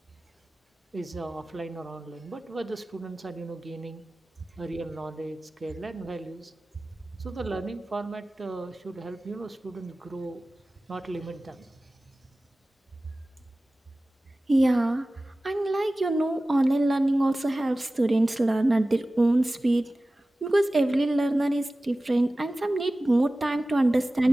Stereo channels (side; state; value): both; normal; correlation 0.97